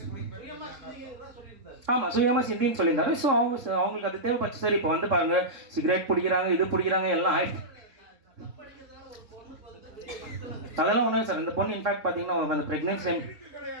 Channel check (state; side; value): late; left; 3.7 ms